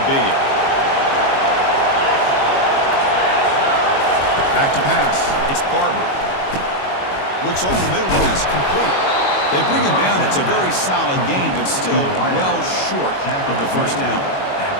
be? Back to pass. It's Barber. Looks over the middle, and that's complete. They bring him down. It's a very solid game, but still well short of the first down.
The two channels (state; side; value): late; right; 22 ms